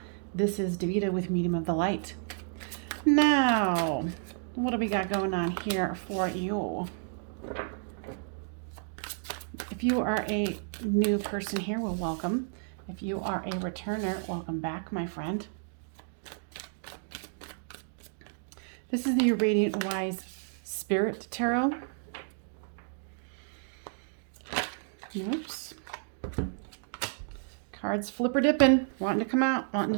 This is Davida with Medium of the Light. Now, what do we got going on here for you? If you are a new person here, well, welcome. If you are a returner, welcome back, my friend. This is the Radiant Wise Spirit Tarot. Oops. Cards flipper dipping, wanting to come out, wanting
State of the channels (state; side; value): silent; left; digital silence